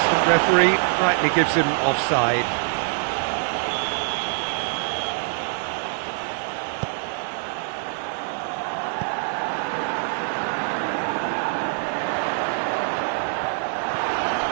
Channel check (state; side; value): silent; left; 60 dB below the other